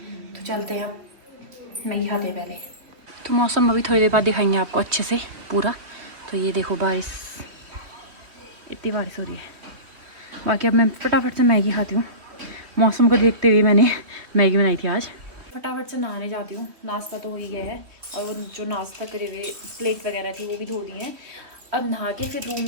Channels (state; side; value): late; left; 3.3 ms